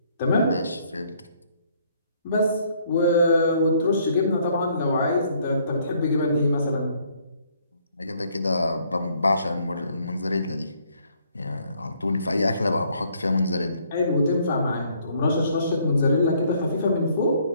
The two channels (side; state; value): both; inverted; correlation -0.65